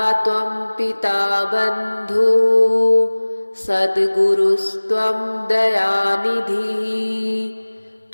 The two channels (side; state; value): both; inverted; correlation -1.00